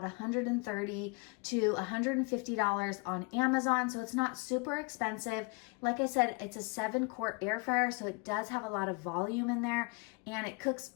$130 to $150 on Amazon, so it's not super expensive. Like I said, it's a 7-quart air fryer, so it does have a lot of volume in there, and it cooks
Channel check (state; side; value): quieter; right; 29.8 dB